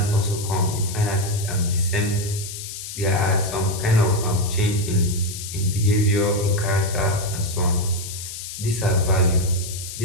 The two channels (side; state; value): left; noise; hiss, 9 dB below the sound